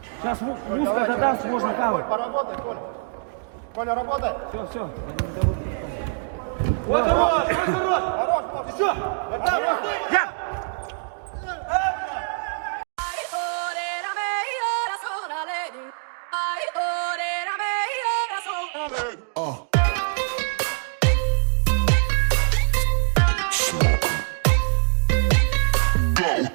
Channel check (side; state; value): left; silent; digital silence